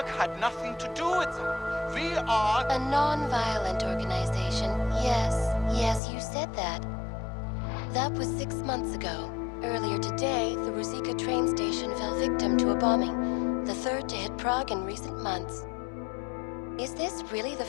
had nothing to do with that. We are... A non-violent organization. Yes, you said that. That was 6 months ago. Earlier today, the Ruzicka train station fell victim to a bombing, the third to hit Prague in recent months. Is this really the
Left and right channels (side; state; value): right; drops out; at 6.0 s